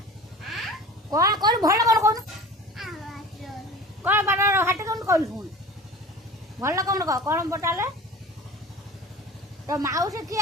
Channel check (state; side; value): normal; both; correlation 0.38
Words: कौन कौन भल कौन कौन कौन बार हाट कौन कहलु शुण भल कौन कह कौन पचारे तो माउसी